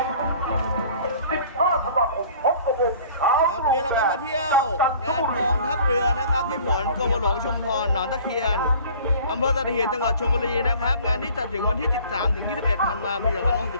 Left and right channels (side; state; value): both; inverted; correlation -0.49